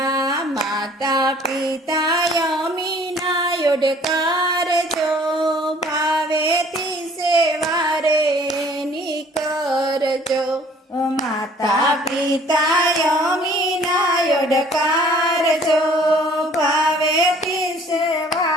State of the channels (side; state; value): both; normal; correlation 0.54